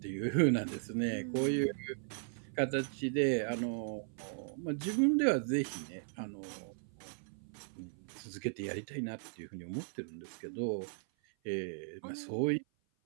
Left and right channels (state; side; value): silent; left; 53 dB below the other